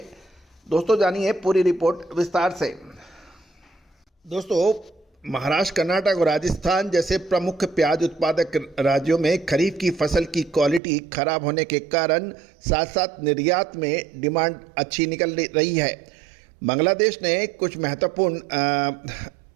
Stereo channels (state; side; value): drops out; left; at 10.8 s